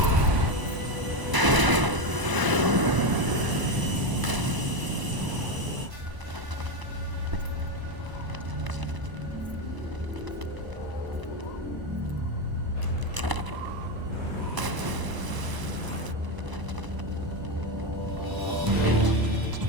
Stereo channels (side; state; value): left; late; 1.0 ms